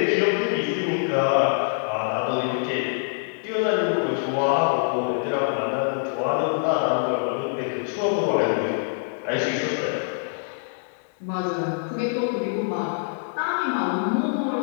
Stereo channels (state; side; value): silent; right; digital silence